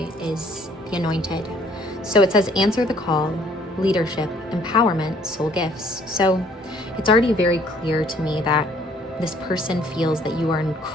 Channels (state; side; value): normal; both; correlation 0.60